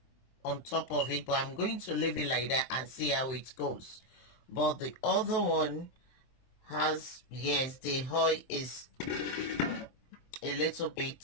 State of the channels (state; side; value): late; right; 23 ms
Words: on top of it, but I'm going to leave it like that and see how it goes. But the other one has, yes, the oil is a little